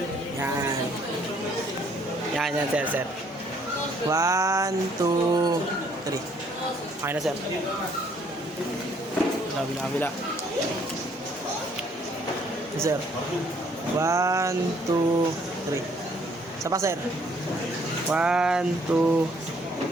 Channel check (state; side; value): normal; both; correlation 0.64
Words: Yan. Yan, sir. 1, 2, 3. Okay na, sir. Kabila. Sir. 1, 2, 3. Isa pa, sir. 1,